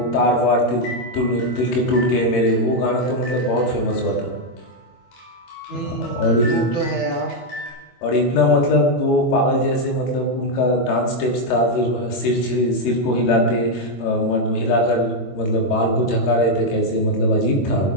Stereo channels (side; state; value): right; late; 22 ms